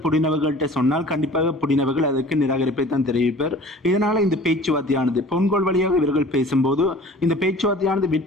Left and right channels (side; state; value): both; normal; correlation 0.45